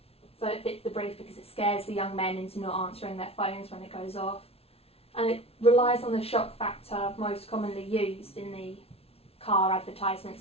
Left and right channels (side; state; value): right; late; 0.29 ms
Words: So it fits the brief because it scares the young men into not answering their phones when it goes off. And it relies on the shock factor most commonly used in the car